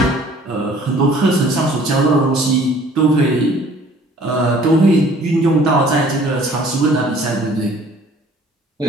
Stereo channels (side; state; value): both; normal; correlation 0.54